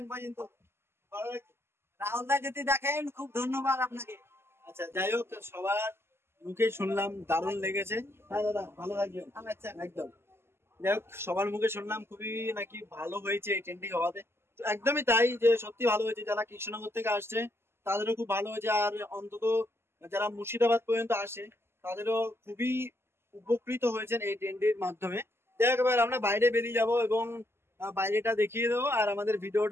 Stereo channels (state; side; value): late; left; 0.12 ms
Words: পর্যন্ত রাহুল দা যদি দেখেন, খুব ধন্যবাদ আপনাকে। আচ্ছা, যাই হোক, সবার মুখে শুনলাম দারুণ লেগেছে। হ্যাঁ দাদা, ভালো থাকবেন। আচ্ছা। একদম। যাই হোক, সবার মুখে শুনলাম খুবই নাকি ভালো হয়েছে এই ট্রেনটি হওয়াতে। তো একদমই তাই, যে সত্যি ভালো হয়েছে। যারা কৃষ্ণনগর থেকে আসছে তাদেরও খুব ভালো হয়েছে, আর অন্তত যারা মুর্শিদাবাদ পর্যন্ত আসে তাদেরও খুবই উপকৃত হয়েছেন এই ট্রেনটির মাধ্যমে। যাই হোক, এবার আমরা বাইরে বেরিয়ে যাব এবং বাইরেটা দেখিয়ে দেবো, আর আমাদের